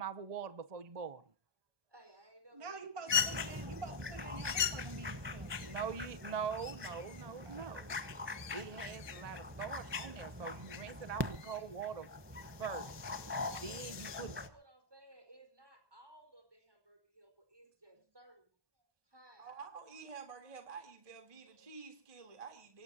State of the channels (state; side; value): late; left; 1.2 ms